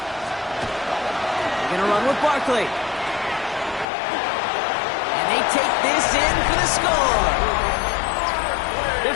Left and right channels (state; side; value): drops out; right; at 3.9 s